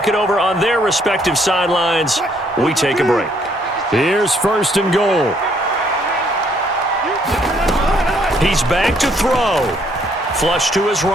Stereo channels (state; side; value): normal; both; correlation 0.67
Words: it over on their respective sidelines, we take a break. Here's 1st and goal. He's back to throw. Flush to his